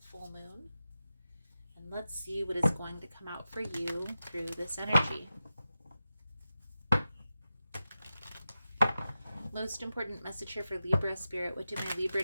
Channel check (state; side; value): inverted; both; correlation -0.92